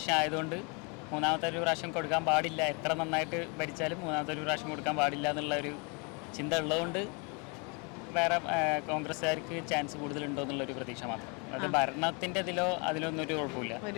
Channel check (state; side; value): quieter; right; 33.0 dB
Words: ആയതുകൊണ്ട് 3ാമത്തെ ഒരു പ്രാവശ്യം കൊടുക്കാൻ പാടില്ല. എത്ര നന്നായിട്ട് ഭരിച്ചാലും 3ാമത്തെ ഒരു പ്രാവശ്യം കൊടുക്കാൻ പാടില്ല എന്നുള്ള ഒരു ചിന്ത ഉള്ളതുകൊണ്ട് വേറെ കോൺഗ്രസ്സുകാർക്ക് ചാൻസ് കൂടുതലുണ്ടോ എന്നുള്ളൊരു പ്രതീക്ഷ മാത്രം. അത് ഭരണത്തിൻ്റെ അതിലൊന്നും ഒരു കുഴപ്പമില്ല.